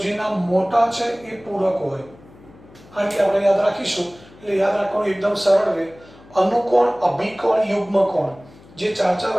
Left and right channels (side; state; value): left; noise; hum, 24 dB below the sound